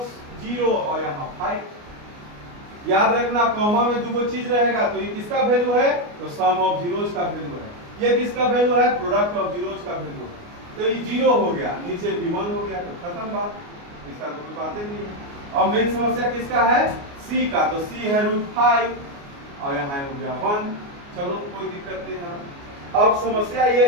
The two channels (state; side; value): late; left; 29 ms